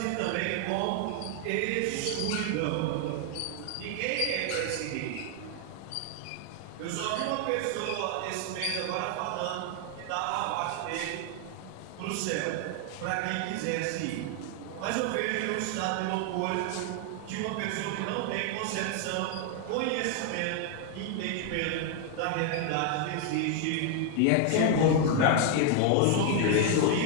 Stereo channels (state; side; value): different; both; correlation 0.00